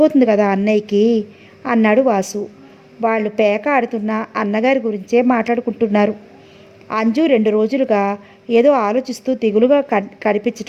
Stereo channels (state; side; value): identical; both; correlation 1.00